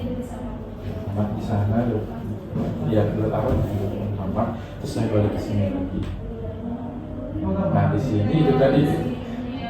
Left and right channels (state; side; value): identical; both; correlation 1.00